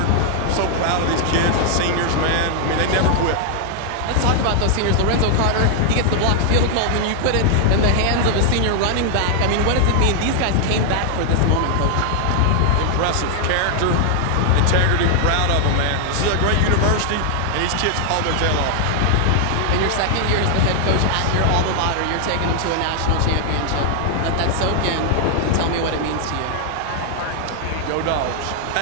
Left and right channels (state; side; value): different; both; correlation 0.00